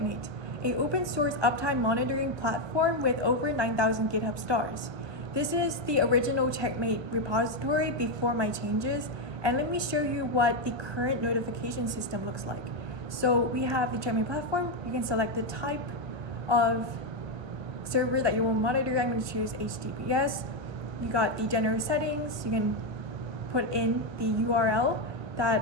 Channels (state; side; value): late; left; 1.2 ms